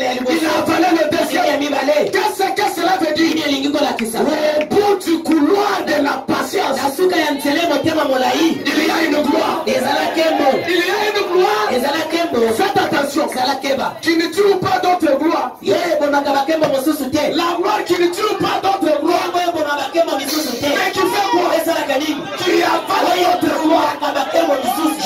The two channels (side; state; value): both; identical; correlation 1.00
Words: Il a avalé le deuxième. Qu'est-ce que cela veut dire? Au bout du couloir de la patience, il y a une gloire. Il y a une gloire. Faites attention. Qui ne tue pas d'autres gloires. La gloire qui ne tue pas d'autres gloires. Mais qui fait quoi? Qui avale d'autres gloires.